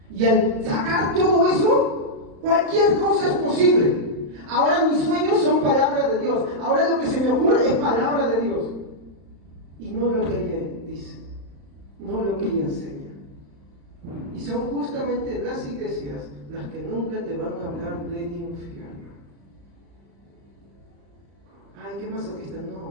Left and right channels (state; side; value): late; left; 35 ms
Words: Y al sacar todo eso, cualquier cosa es posible. Ahora mis sueños son palabras de Dios. Ahora lo que se me ocurre es palabra de Dios. Y no lo que ella dice, no lo que ella enseña. Y son justamente las iglesias las que nunca te van a hablar del infierno. Ay, qué masoquista,